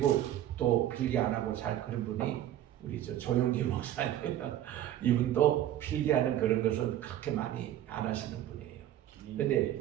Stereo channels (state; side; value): quieter; left; 12.2 dB